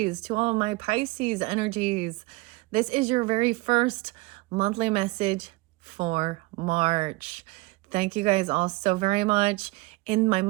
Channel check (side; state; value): left; quieter; 22.7 dB